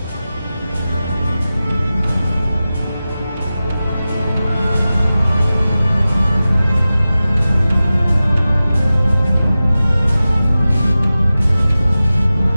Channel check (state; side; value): inverted; both; correlation -0.95